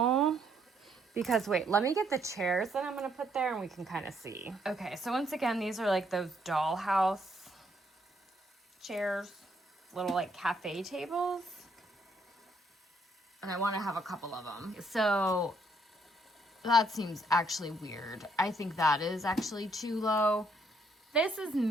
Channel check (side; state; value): both; normal; correlation 0.71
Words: Because wait, let me get the chairs that I'm going to put there and we can kind of see. Okay, so once again, these are like those dollhouse chairs, little like cafe tables. And I want to have a couple of them. So that seems actually weird. I think that is actually too low. This is